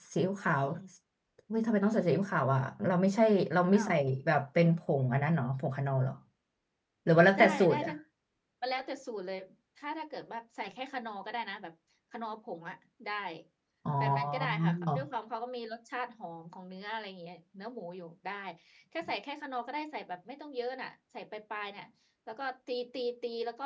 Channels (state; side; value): identical; both; correlation 1.00